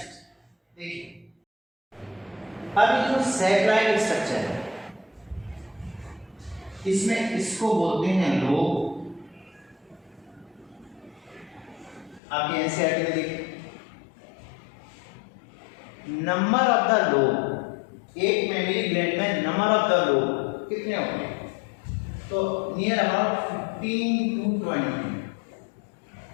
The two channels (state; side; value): drops out; right; at 12.2 s